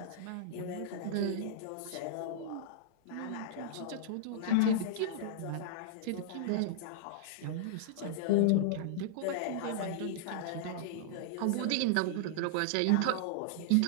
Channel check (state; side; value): different; both; correlation -0.02